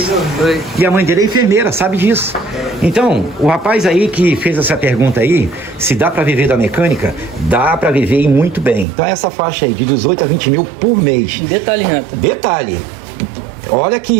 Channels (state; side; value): drops out; left; at 8.8 s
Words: Foi. E a mãe dele é enfermeira, sabe disso. Então, o rapaz aí que fez essa pergunta aí, se dá pra viver da mecânica, dá pra viver e muito bem. Então essa faixa aí de 18 a 20 mil por mês. Detalhe, Renato. Detalhe, olha